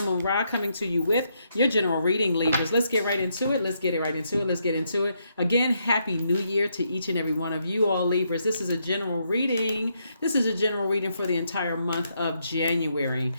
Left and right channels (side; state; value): both; inverted; correlation -0.77